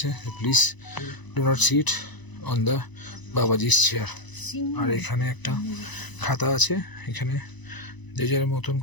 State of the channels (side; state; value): right; late; 1.0 ms